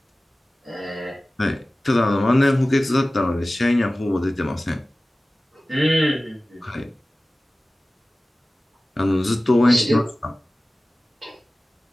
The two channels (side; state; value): both; normal; correlation 0.97